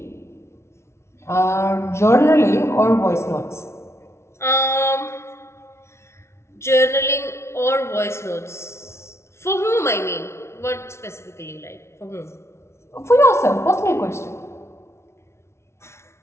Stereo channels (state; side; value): late; right; 0.13 ms